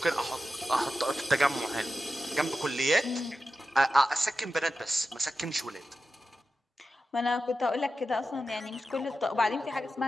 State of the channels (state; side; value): normal; both; correlation 0.92